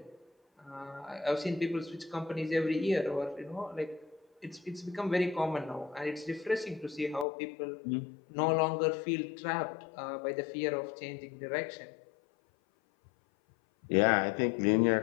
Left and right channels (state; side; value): drops out; right; at 7.2 s